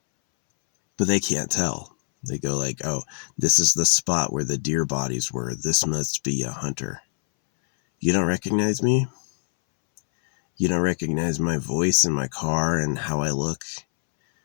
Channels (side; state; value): right; silent; 63 dB below the other